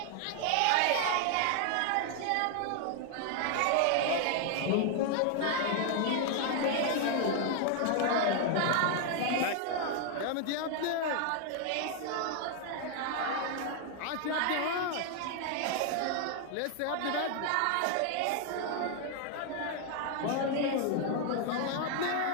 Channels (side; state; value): both; different; correlation 0.00